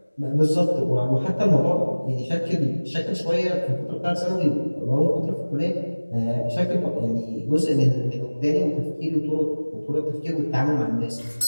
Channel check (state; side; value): inverted; both; correlation -1.00